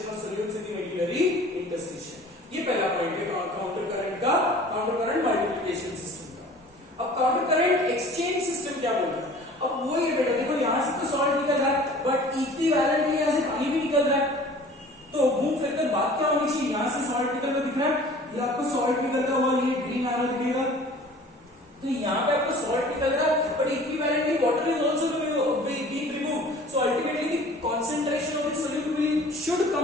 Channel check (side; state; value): both; normal; correlation 0.47